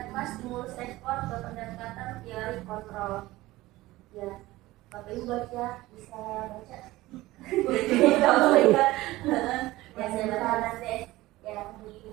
stimulus respon ke pendekatan teori kontrol. Ya, Bapak Ibu baca, bisa baca. Ya saya baca nanti. Ya,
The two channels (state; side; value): quieter; left; 18.1 dB